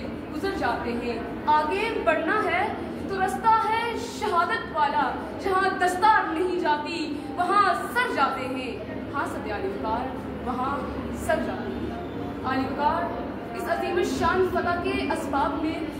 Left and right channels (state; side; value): identical; both; correlation 1.00